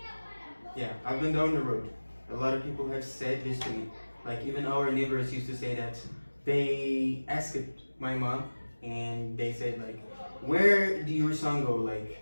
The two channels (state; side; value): inverted; both; correlation -1.00